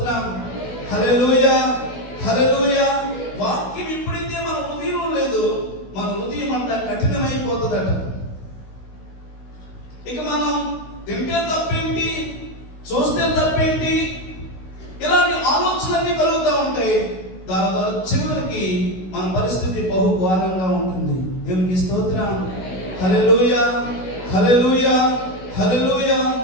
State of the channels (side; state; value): right; late; 16 ms